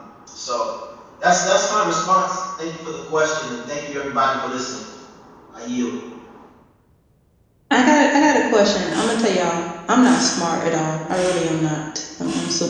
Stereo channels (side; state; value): both; identical; correlation 1.00